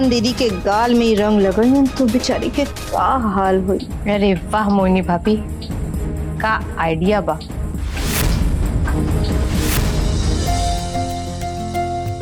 दीदी के गाल में ही रंग लगाइयन तो बेचारी के का हाल हुई। अरे वाह मोहिनी भाभी, का आइडिया बा।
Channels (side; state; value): both; identical; correlation 1.00